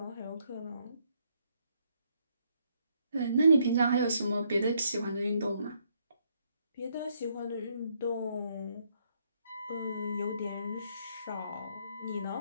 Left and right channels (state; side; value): inverted; both; correlation -0.72